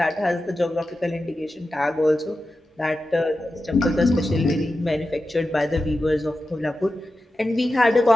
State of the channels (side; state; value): both; normal; correlation 0.92